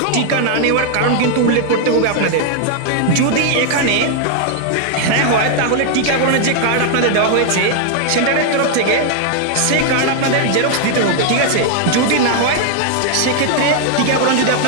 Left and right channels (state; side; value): different; both; correlation 0.00